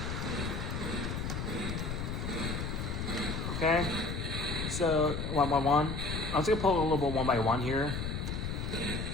Okay, so one by one. I'm just gonna pull a little bit one by one here.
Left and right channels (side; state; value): left; noise; rumble, 3 dB below the sound